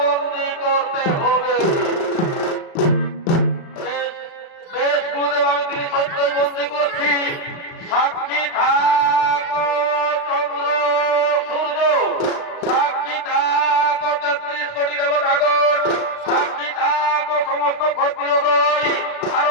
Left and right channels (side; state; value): right; late; 35 ms